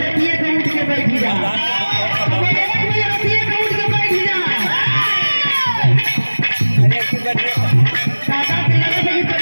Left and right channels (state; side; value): inverted; both; correlation -1.00